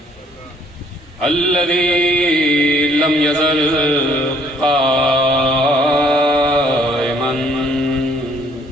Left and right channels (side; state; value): both; normal; correlation 0.62